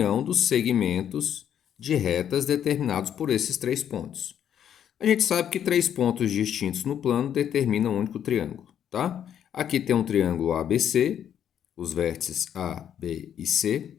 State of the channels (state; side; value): quieter; right; 9.5 dB